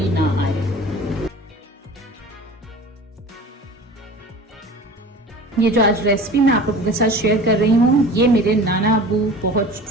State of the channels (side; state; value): both; normal; correlation 0.39